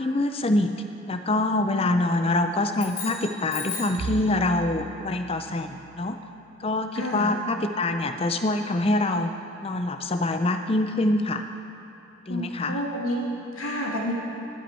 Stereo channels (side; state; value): both; normal; correlation 0.48